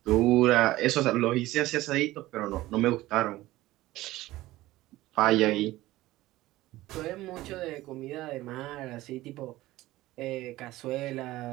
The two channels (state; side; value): quieter; left; 17.1 dB